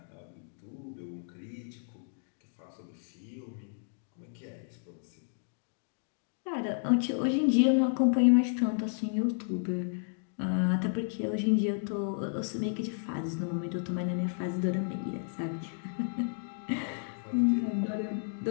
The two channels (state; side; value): silent; right; digital silence